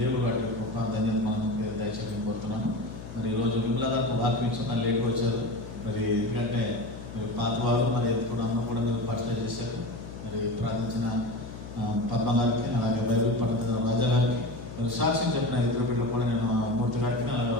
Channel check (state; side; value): noise; left; hum, 12 dB below the sound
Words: వాటి గొప్ప ధన్యత మనం దయచేసి కోరుతున్నాను. మరి ఈరోజు విమలా గారికి వాక్యం ఇచ్చిన లేట్గా వచ్చారు. మరి ఎందుకంటే మరి పాతవారు మరి కూడా అందరూ కూడా మీరు పరిచయం చేశారు. మరి ప్రార్థించిన పద్మ గారికి, అలాగే బైబిల్ పండితుల రాజా గారికి, మరి సాక్ష్యం చెప్పిన ఇద్దరు బిడ్డలు కూడా నేను మూర్తి గారికి,